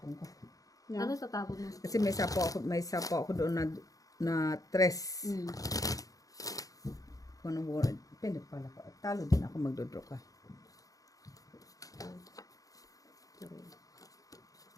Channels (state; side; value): late; right; 0.17 ms